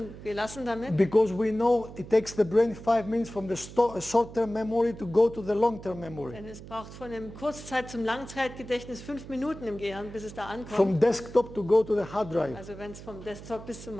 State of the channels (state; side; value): noise; right; hum, 14 dB below the sound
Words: gelassen damit, because we know it takes the brain 5 minutes from the short-term memory to go to the long-term memory. denn es braucht von dem Kurzzeit- zum Langzeitgedächtnis 5 Minuten im Gehirn, bis es da ankommt. From desktop to go to the hard drive. Also wenn es vom Desktop bis